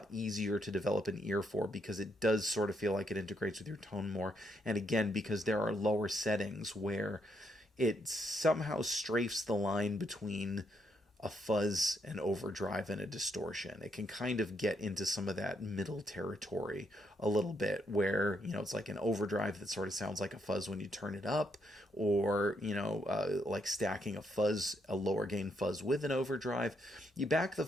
easier to develop an ear for because it does sort of feel like it integrates with your tone more. And again, because there are lower settings where it somehow strafes the line between a fuzz, an overdrive, and a distortion. It can kind of get into some of that middle territory a little bit where, it's like an overdrive that sort of sounds like a fuzz when you turn it up, or, like stacking a lower gain fuzz with an overdrive. You back the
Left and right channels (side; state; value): both; normal; correlation 0.76